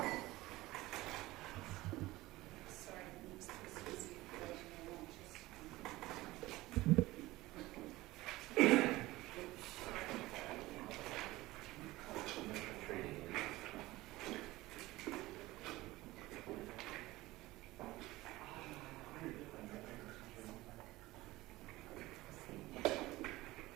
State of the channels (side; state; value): left; quieter; 18.7 dB